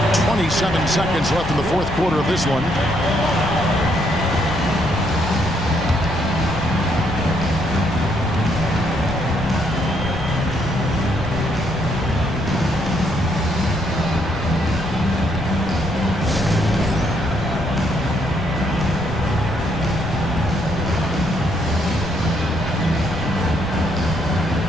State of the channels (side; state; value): left; noise; rumble, 10 dB below the sound